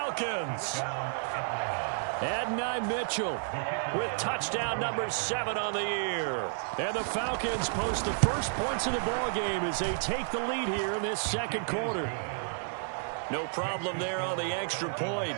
Adonai Mitchell with touchdown number 7 on the year. And the Falcons post the first points of the ball game as they take the lead here in this 2nd quarter. No problem there on the extra point.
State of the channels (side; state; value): left; silent; digital silence